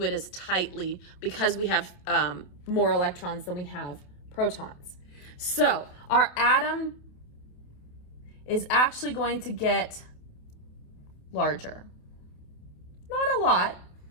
it as tightly because we have more electrons than we have protons. So our atom is actually going to get larger. Not a lot,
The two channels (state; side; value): late; right; 28 ms